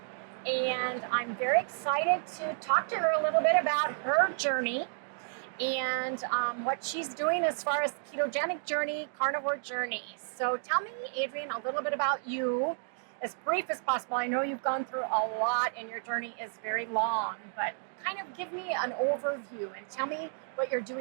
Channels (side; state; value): left; silent; digital silence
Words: and I'm very excited to talk to her a little bit about her journey and what she's doing as far as ketogenic journey, carnivore journey. So tell me, Adrian, a little bit about you, as brief as possible. I know you've gone through a lot and your journey is very long, but kind of give me an overview and tell me what you're